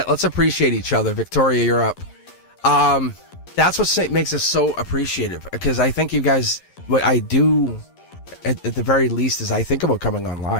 appreciate each other. Victoria, you're up. That's what makes us so appreciative, because I think you guys, what I do at the very least is I think about coming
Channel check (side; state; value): right; late; 11 ms